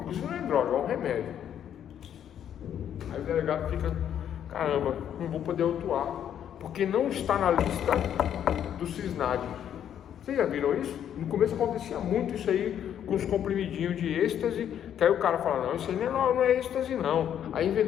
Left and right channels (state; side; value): quieter; right; 9.7 dB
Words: inclusive não é droga, é um remédio. Aí o delegado fica, caramba, não vou poder autuar, porque não está na lista do CISNAD. Vocês já viram isso? No começo acontecia muito isso aí, com os comprimidinhos de êxtase, que aí o cara fala, não, isso aí não é êxtase não. Aí